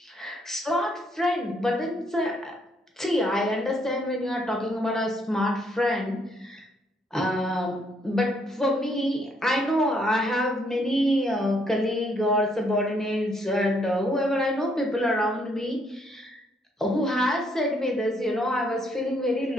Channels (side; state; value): both; normal; correlation 0.70